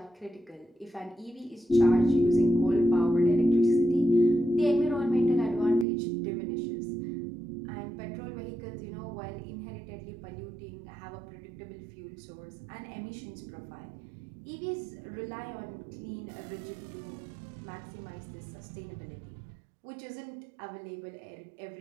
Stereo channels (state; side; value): drops out; left; at 5.9 s